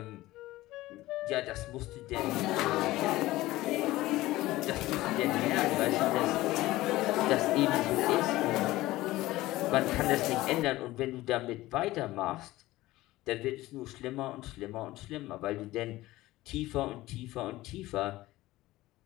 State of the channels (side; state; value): right; quieter; 17.5 dB